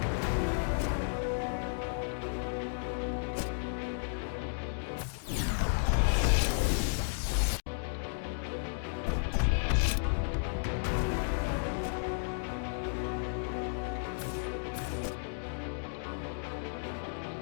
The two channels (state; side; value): silent; right; digital silence